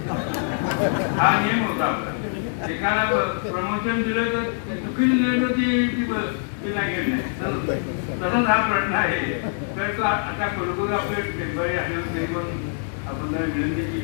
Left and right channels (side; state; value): right; silent; digital silence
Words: हा नियम होता आपला. एकाला प्रमोशन दिलं तर चुकीचं दिलं तर ती लागेल नाही. तसंच हा प्रश्न आहे. तर तो आता कुलगुरू आपलं टेम्पररी असल्यावर तरी पण आपण त्यांना विनंती